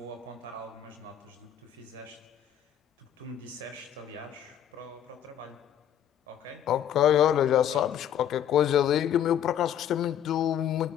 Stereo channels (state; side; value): quieter; right; 10.0 dB